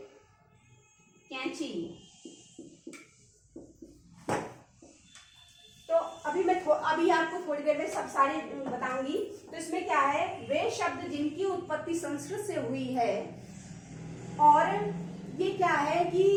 कैंची। तो अभी आपको थोड़ी देर में सब सारी बताऊंगी। तो इसमें क्या है, वे शब्द जिनकी उत्पत्ति संस्कृत से हुई है, और ये क्या है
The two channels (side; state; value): both; identical; correlation 1.00